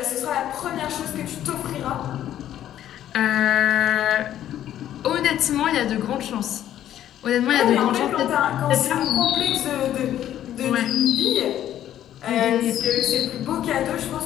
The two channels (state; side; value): quieter; right; 11.6 dB